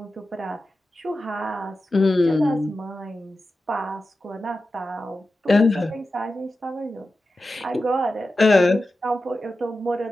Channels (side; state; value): both; normal; correlation 0.93